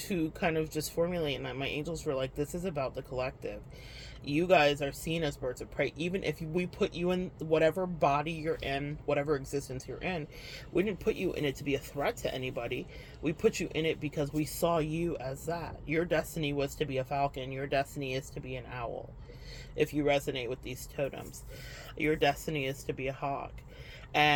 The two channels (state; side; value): identical; both; correlation 1.00